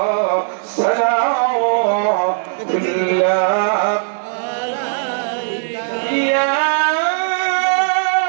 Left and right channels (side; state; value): left; silent; digital silence